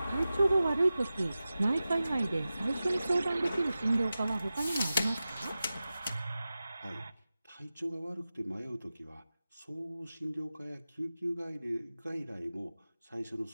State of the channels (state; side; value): inverted; both; correlation -0.94